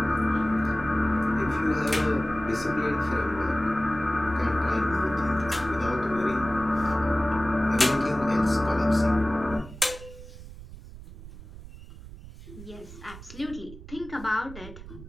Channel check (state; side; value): noise; right; rumble, 15 dB below the sound